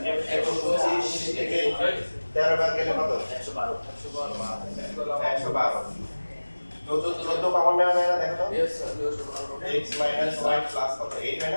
125 থেকে 13 বাদ গেলে কত 112 14 কমন নেওয়া যায় না দেখো তো x minus y plus কত 8 হয়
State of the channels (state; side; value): inverted; both; correlation -1.00